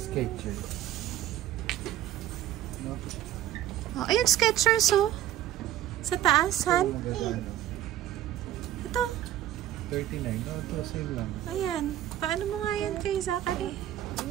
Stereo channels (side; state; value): left; quieter; 12.6 dB